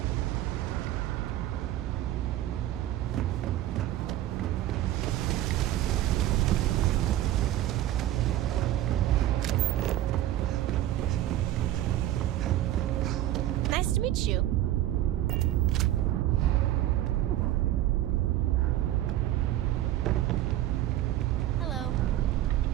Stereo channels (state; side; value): quieter; left; 13.5 dB